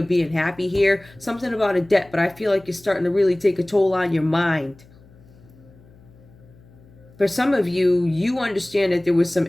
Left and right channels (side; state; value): left; noise; hum, 26 dB below the sound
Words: being happy here. Something about a debt, but I feel like it's starting to really take a toll on your mind. For some of you, you understand that there was some